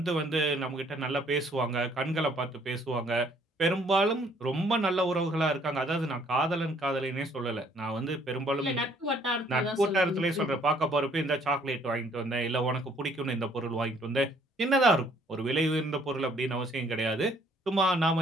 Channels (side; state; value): both; normal; correlation 0.63